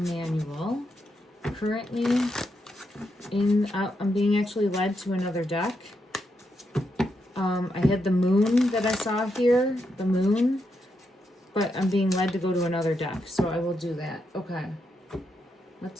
Currently in, I'm being actually led to another deck. I had the moon that I saw here, the moon, but I'm being led to go to another deck, so I will do that. Okay,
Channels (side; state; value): both; normal; correlation 0.82